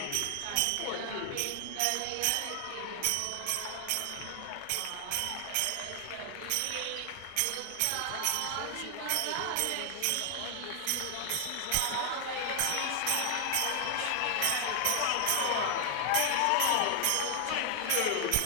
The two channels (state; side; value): different; both; correlation 0.00